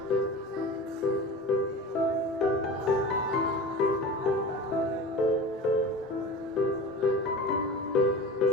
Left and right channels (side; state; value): both; normal; correlation 0.33